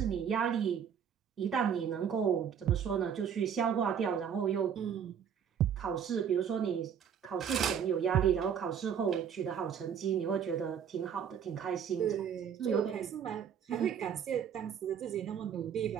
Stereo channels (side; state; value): left; quieter; 8.1 dB